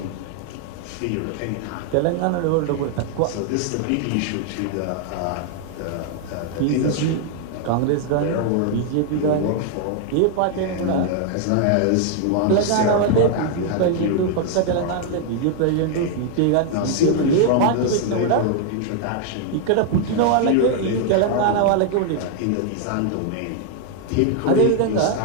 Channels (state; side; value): different; both; correlation 0.00